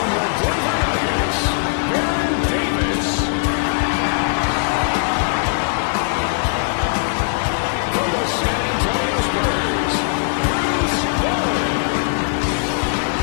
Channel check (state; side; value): silent; right; digital silence